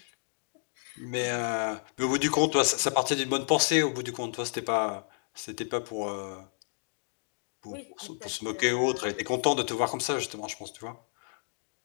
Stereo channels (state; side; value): silent; right; digital silence